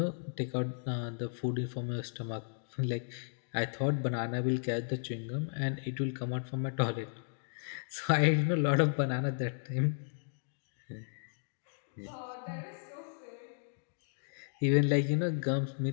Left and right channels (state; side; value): silent; right; digital silence